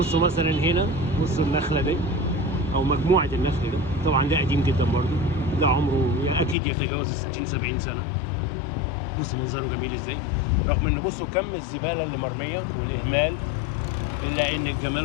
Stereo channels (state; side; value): drops out; right; at 6.6 s